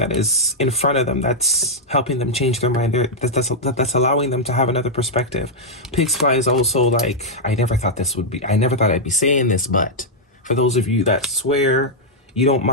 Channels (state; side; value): normal; both; correlation -0.05